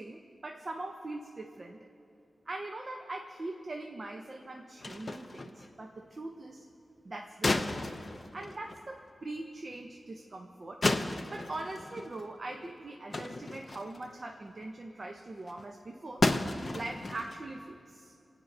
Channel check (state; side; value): normal; both; correlation 0.94